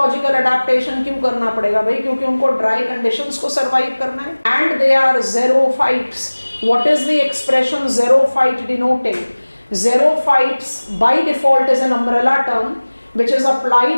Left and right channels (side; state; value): both; inverted; correlation -1.00